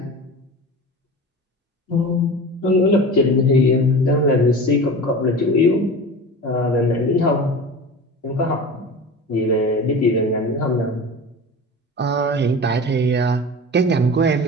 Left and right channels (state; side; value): normal; both; correlation 0.33